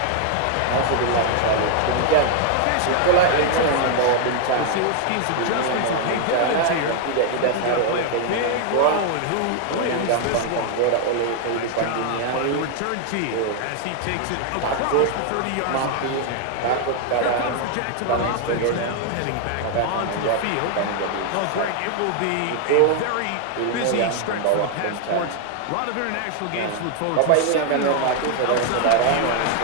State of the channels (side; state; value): both; different; correlation 0.00